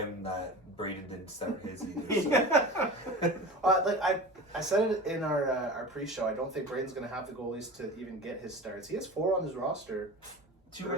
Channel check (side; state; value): both; normal; correlation 0.34